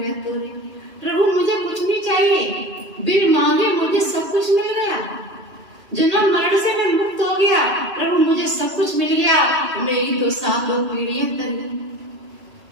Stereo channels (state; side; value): late; left; 2.8 ms